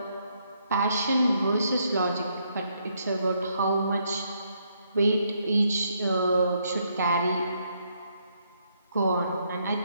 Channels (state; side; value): inverted; both; correlation -0.74